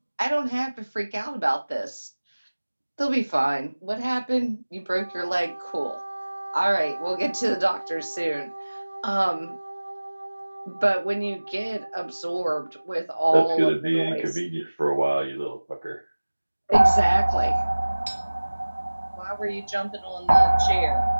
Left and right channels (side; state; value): both; inverted; correlation -1.00